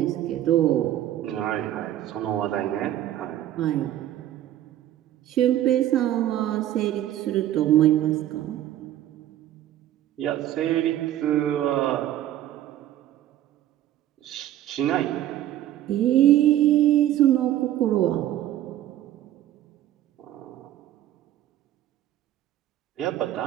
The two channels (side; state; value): left; quieter; 12.7 dB